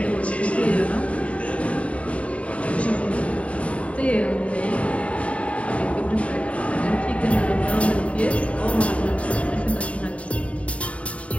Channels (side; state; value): right; late; 0.064 ms